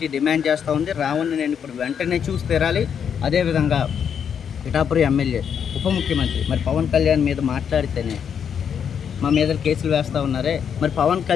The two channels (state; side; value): quieter; right; 7.7 dB